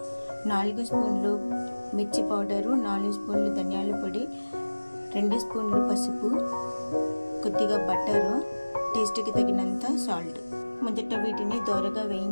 4 స్పూన్లు మిర్చి పౌడరు, 4 స్పూన్లు ధనియాల పొడి, 2 స్పూన్లు పసుపు, కొద్దిగా బటరు, టేస్ట్కి తగినంత సాల్ట్. మొదట వీటిని దోరగా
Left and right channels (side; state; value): both; inverted; correlation -1.00